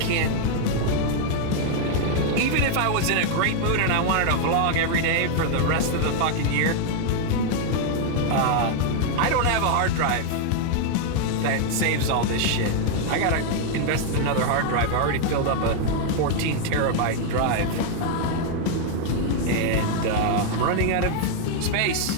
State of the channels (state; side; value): different; both; correlation 0.00